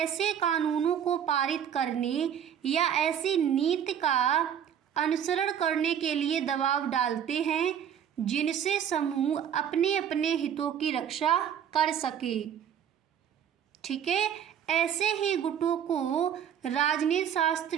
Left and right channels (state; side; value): quieter; left; 9.0 dB